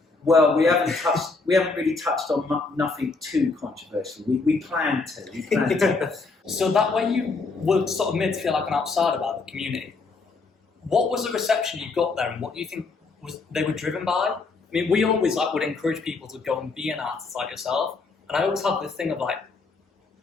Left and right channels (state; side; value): quieter; right; 4.0 dB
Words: Well, we haven't really touched on nothing too controversial. We plan to. So that way you were sort of made to feel like an outsider about the community. What was the reception you got there, and what do you think they were driven by? I mean, we always would encourage people to go and be an artist like yourself, and I always have this thing of I